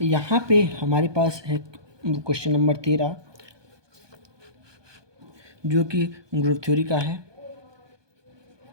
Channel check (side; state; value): left; late; 1.2 ms